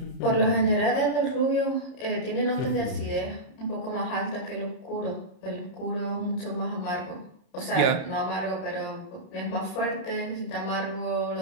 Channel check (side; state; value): right; late; 30 ms